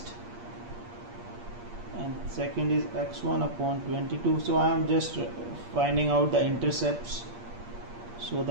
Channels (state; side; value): late; left; 8.5 ms